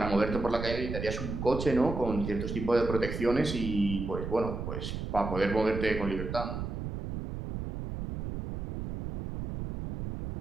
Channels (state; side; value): noise; right; rumble, 5 dB below the sound